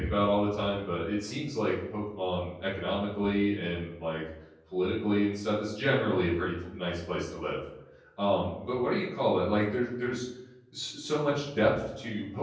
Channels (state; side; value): identical; both; correlation 1.00